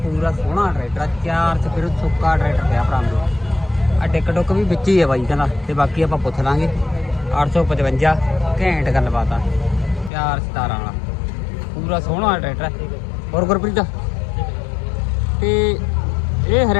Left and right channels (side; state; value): right; drops out; at 10.1 s